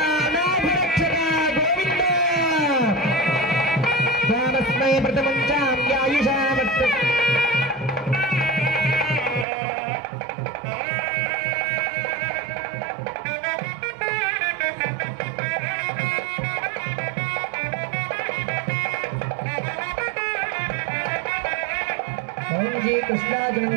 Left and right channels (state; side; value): drops out; left; at 9.5 s